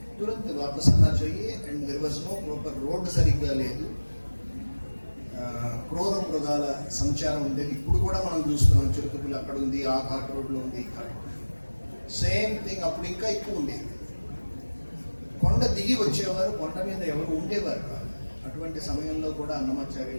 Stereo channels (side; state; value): both; inverted; correlation -1.00